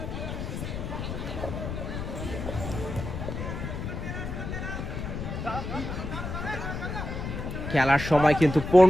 খেলার সময় কিন্তু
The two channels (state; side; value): noise; left; rumble, 5 dB below the sound